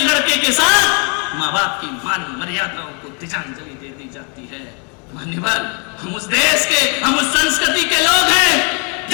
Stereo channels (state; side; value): quieter; right; 36.8 dB